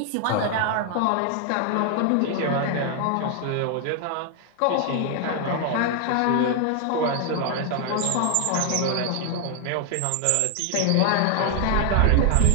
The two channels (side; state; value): both; different; correlation 0.00